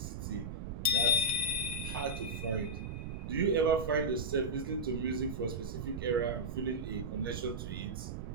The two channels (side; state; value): right; noise; rumble, 5 dB below the sound